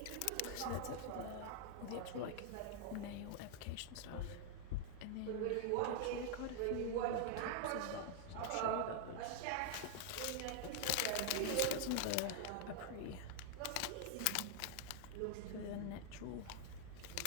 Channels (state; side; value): different; both; correlation 0.00